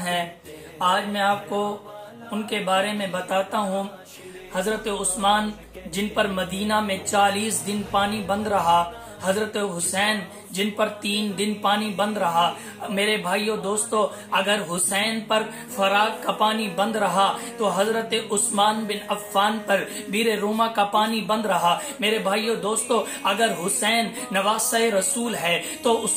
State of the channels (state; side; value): identical; both; correlation 1.00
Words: ہے۔ آج میں آپ کو ان کے بارے میں بتاتا ہوں۔ حضرت عثمان جن پر مدینہ میں 40 دن پانی بند رہا، حضرت حسین جن پر 3 دن پانی بند رہا۔ میرے بھائیو دوستو، اگر حسین پر فرات کا پانی بند رہا تو حضرت عثمان بن عفان پر بیر روما کا پانی بند رہا۔ میرے بھائیو دوستو، اگر حسین نواسہ رسول ہے تو